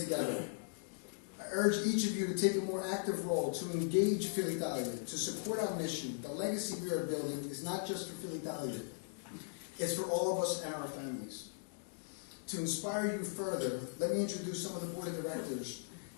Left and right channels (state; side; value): silent; right; digital silence